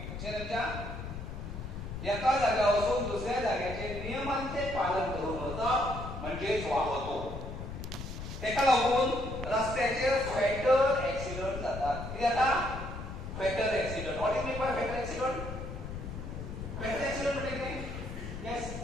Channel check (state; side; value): noise; left; rumble, 8 dB below the sound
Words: लक्षात येता एका जाग्यार वचून दुसऱ्या जाग्याचे नियमांचे पालन करून वचप म्हणजेच वाहतूक तेका लागून रस्त्याचेर फॅटल ऍक्सिडेंट जातात कितें जाता fatal accident what is mean by fatal accident fatal accident म्हणजे कितें yes